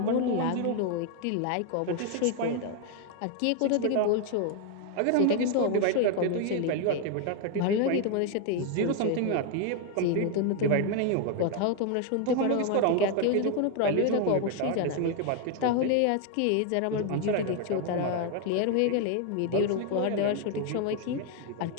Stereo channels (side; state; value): both; different; correlation 0.01